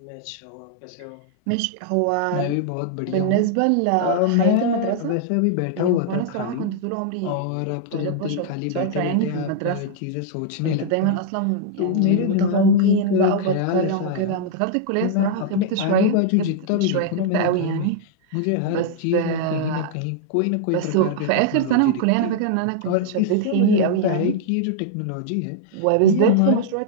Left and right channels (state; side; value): different; both; correlation -0.01